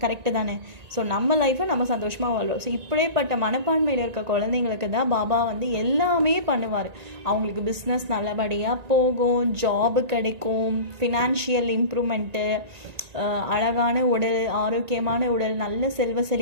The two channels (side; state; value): left; late; 1.9 ms